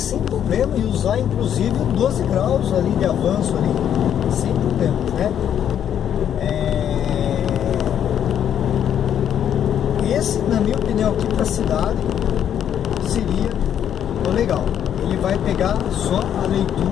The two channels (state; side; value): quieter; right; 9.5 dB